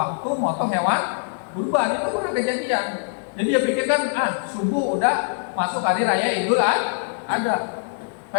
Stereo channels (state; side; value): silent; right; digital silence